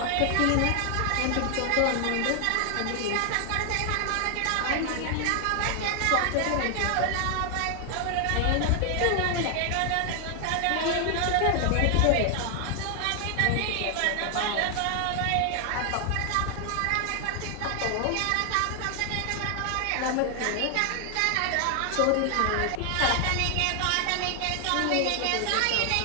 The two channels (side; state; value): both; different; correlation 0.00